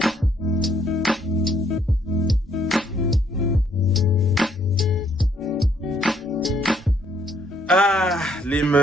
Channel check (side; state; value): both; normal; correlation 0.68